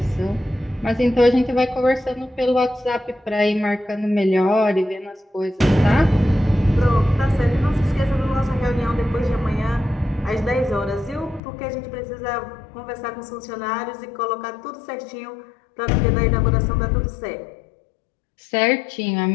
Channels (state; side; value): drops out; right; at 11.4 s